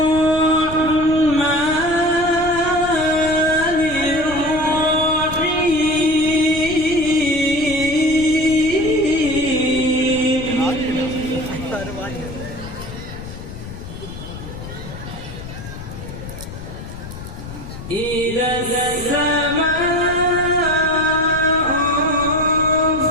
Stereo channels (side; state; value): left; noise; rumble, 12 dB below the sound